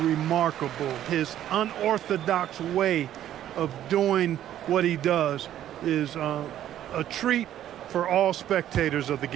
His unorthodox way of doing what he does is a treat for all spectators of the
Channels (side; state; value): left; quieter; 11.7 dB